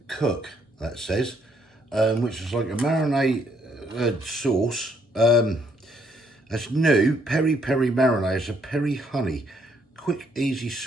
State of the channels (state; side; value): normal; both; correlation 0.70